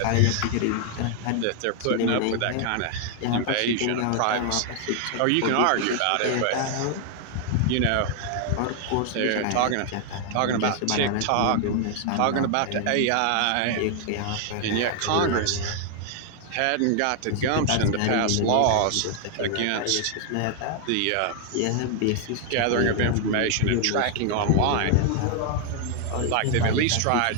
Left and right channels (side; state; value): both; different; correlation 0.00